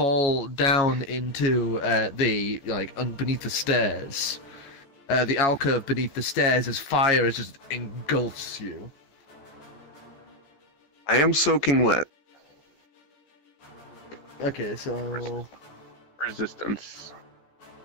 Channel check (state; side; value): late; right; 14 ms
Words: down into beneath the stairs. The alcove beneath the stairs as fire just engulfs you. I am soaking wet. Okay, so... Resistance.